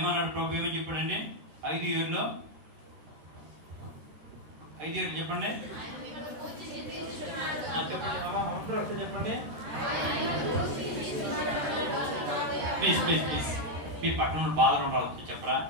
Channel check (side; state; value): left; late; 13 ms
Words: ప్రభు, ఏమని చెప్పాడండి? 5 ఏళ్ళలో 5 ఏళ్ళు చెప్పండి. చెప్పండి చెప్పండి ప్లీజ్ ప్లీజ్ ప్లీజ్. మీ పట్టణంలో బాధలు ఉండాలి, చెప్పరా?